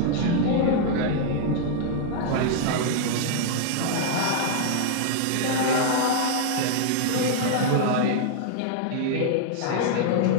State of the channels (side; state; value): both; different; correlation -0.01